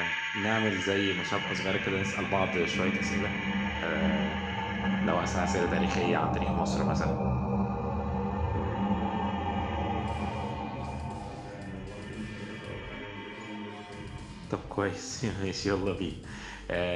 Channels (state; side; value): identical; both; correlation 1.00